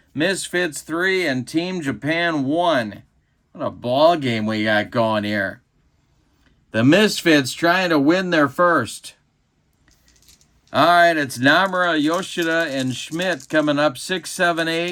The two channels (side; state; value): both; identical; correlation 1.00